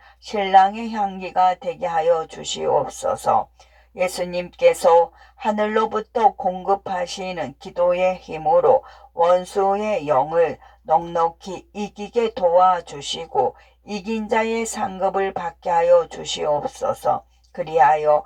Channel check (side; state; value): both; identical; correlation 1.00